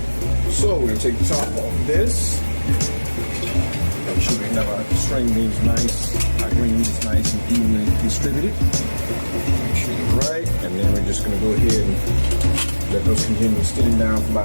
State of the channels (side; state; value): both; inverted; correlation -1.00